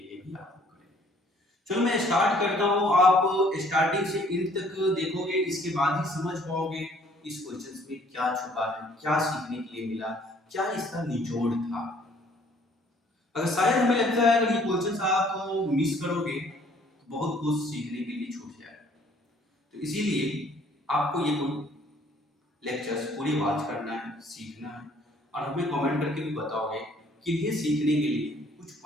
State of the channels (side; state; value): both; normal; correlation 0.59